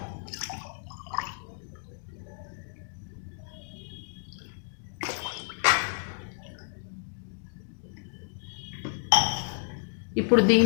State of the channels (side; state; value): right; silent; 57 dB below the other